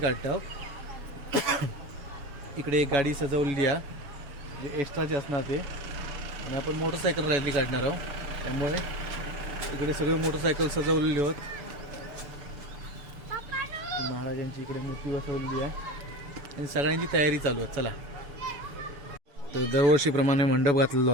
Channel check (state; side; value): late; left; 7.0 ms